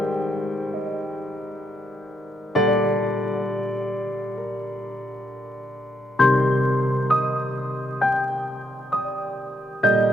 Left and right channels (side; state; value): both; normal; correlation 0.79